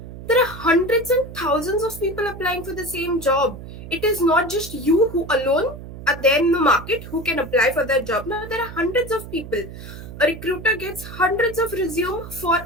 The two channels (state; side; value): noise; right; hum, 13 dB below the sound